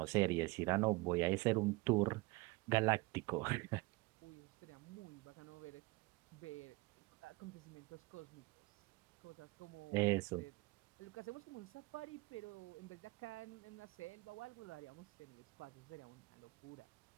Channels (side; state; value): left; quieter; 23.3 dB